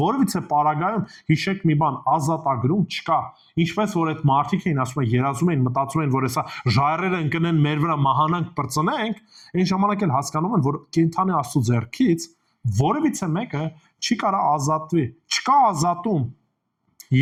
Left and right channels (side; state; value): both; identical; correlation 1.00